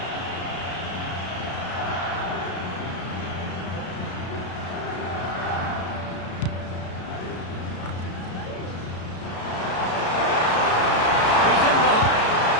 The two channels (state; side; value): late; right; 33 ms